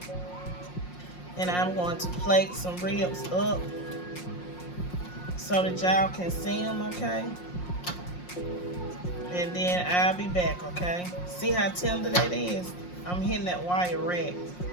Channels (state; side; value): late; right; 5.6 ms